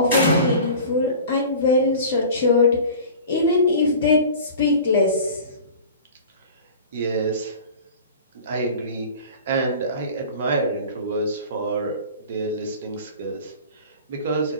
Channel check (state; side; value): inverted; both; correlation -0.40